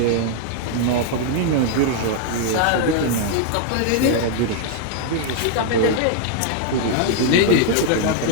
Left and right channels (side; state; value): both; different; correlation -0.01